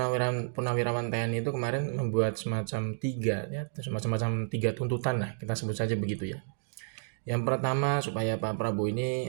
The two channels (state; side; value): silent; left; digital silence